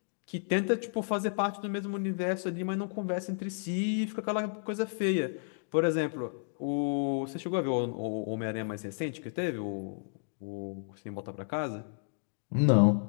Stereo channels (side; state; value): right; silent; digital silence